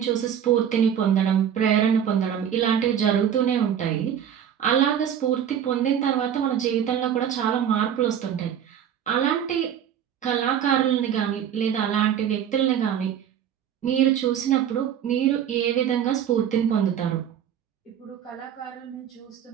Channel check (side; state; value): left; quieter; 9.2 dB